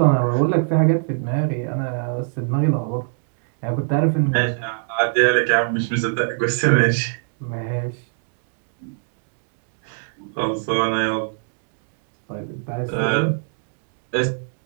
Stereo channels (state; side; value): silent; left; digital silence